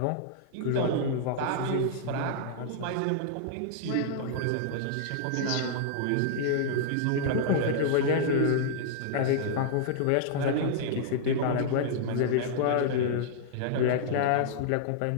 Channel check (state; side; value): different; both; correlation -0.01